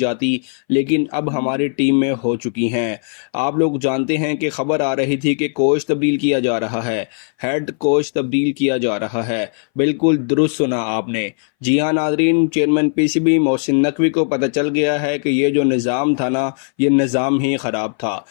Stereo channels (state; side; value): silent; right; 63 dB below the other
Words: लेकिन अब हमारी टीम में हो चुकी हैं। आप लोग जानते हैं कि खबर आ रही थी कि कोच तब्दील किया जा रहा है, हेड कोच तब्दील किया जा रहा है। बिल्कुल दुरुस्त सुना आपने। जी हाँ नाजरीन, चेयरमैन पीसीबी मोहसिन नकवी को पता चल गया है कि ये जो निज़ाम था ना, ये निज़ाम ही ख़राब था।